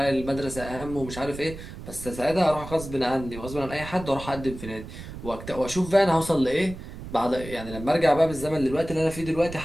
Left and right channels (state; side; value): noise; right; rumble, 12 dB below the sound